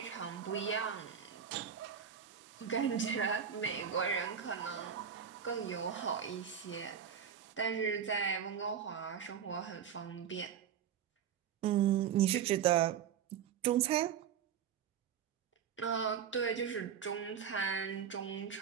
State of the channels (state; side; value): quieter; left; 8.1 dB